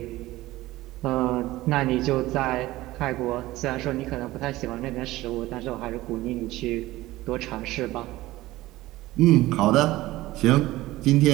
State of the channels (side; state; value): left; quieter; 17.5 dB